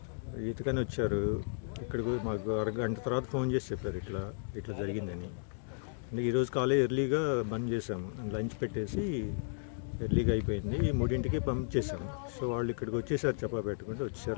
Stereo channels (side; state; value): right; silent; digital silence